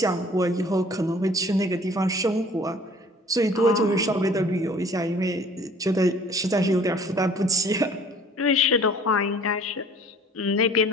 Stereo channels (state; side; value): normal; both; correlation 0.51